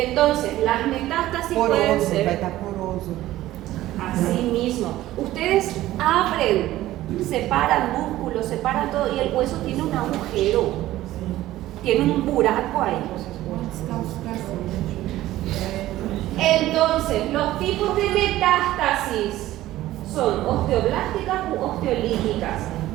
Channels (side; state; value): left; quieter; 15.2 dB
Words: las metástasis pueden Poroso, vai ser estar poroso. así mismo. Ustedes abren, separan músculos, separan todo y el hueso tiene un agujero, tiene un buraco ahí. Entonces, los tipos de metástasis son osteoblásticas u osteolíticas.